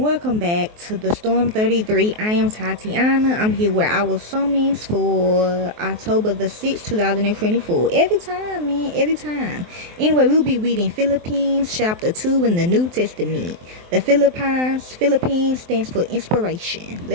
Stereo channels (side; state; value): left; late; 23 ms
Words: welcome back to the Storm 33. I am Tatiana. I'm here with our summons for October the 6th, 2024. Every time, man, every time. Anyway, we'll be reading Philippians chapter 2 in the New Testament. The Philippines stands for inspiration.